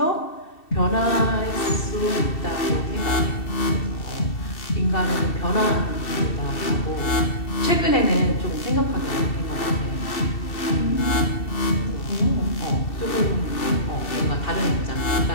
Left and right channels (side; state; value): right; late; 2.7 ms